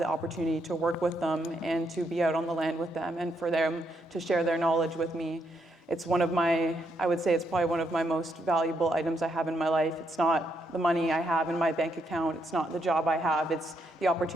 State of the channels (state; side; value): normal; both; correlation 0.77